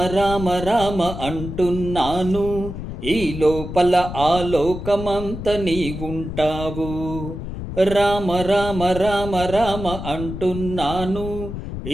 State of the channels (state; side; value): noise; left; rumble, 8 dB below the sound